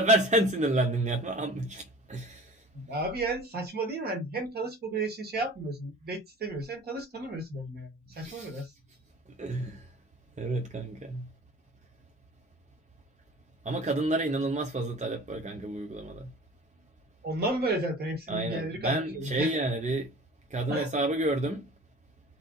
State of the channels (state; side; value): normal; both; correlation 0.43